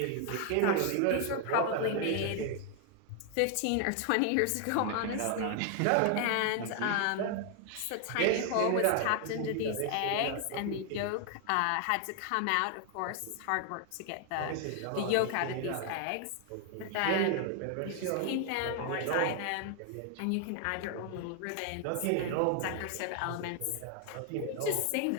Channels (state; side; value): different; both; correlation 0.00